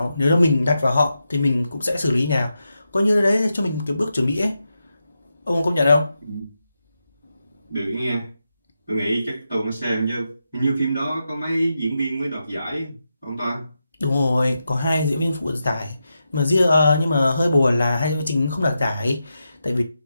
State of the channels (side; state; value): both; inverted; correlation -0.87